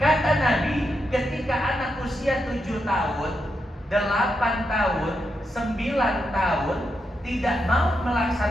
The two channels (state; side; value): normal; both; correlation 0.84